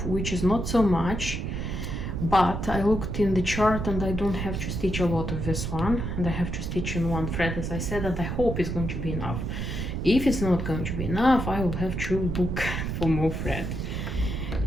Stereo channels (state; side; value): noise; right; rumble, 3 dB below the sound